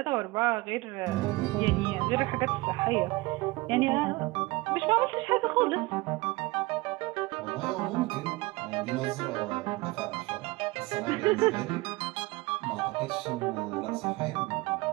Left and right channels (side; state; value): left; quieter; 22.0 dB